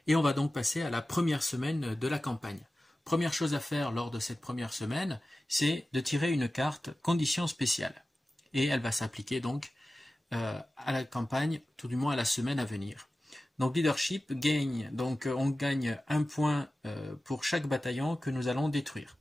et on va donc passer à la première semaine de la campagne. Première chose à faire lors de cette première semaine, c'est de tirer une carte conditions spéciales et elle va s'appliquer donc à la campagne, tout du moins à la semaine à venir. Donc leadership gagne, donc on gagne un point pour chaque bataillon que nous allons détruire.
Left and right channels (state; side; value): normal; both; correlation 0.95